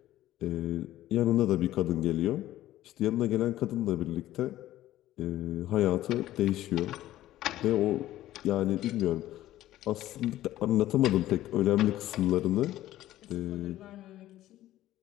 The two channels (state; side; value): quieter; right; 14.3 dB